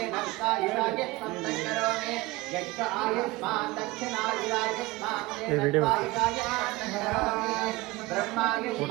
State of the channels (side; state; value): left; quieter; 21.2 dB